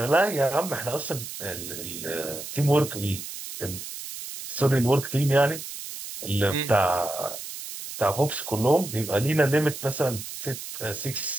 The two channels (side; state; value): right; noise; hiss, 9 dB below the sound